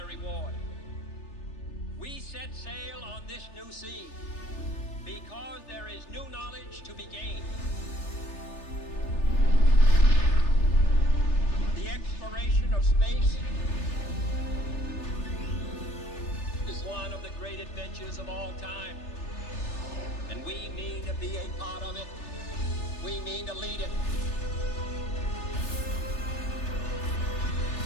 reward. We set sail on this new sea because there is new knowledge to be gained. The exploration of space is one of the great adventures of all time. And we mean to be a part of it. We mean to lead it.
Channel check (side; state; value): right; late; 3.3 ms